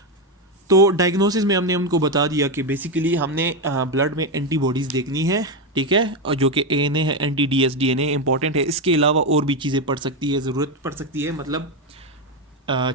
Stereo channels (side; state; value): both; normal; correlation 0.09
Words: تو ڈائگنوسس میں ہم نے ان کو بتا دیا کہ بیسیکلی ہم نے بلڈ میں اینٹی باڈیز دیکھنی ہے، ٹھیک ہے، اور جو کہ اے این اے ہے، anti D S D N A important ہے۔ اس کے علاوہ اور بھی چیزیں پڑ سکتی ہے، ضرورت پڑ سکتی ہے، مطلب